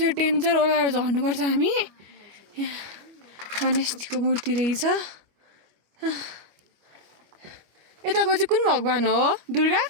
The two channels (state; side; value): late; left; 25 ms